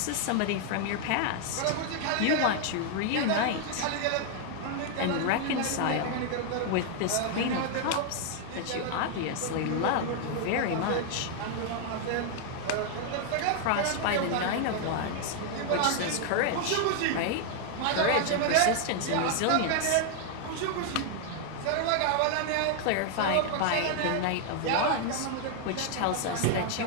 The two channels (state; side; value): different; both; correlation 0.00